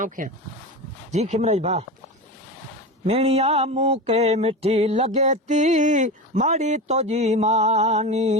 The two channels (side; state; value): both; normal; correlation 0.24